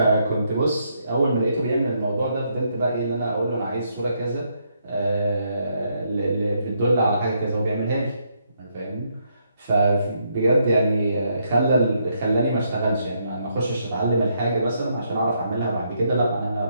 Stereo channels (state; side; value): inverted; both; correlation -0.76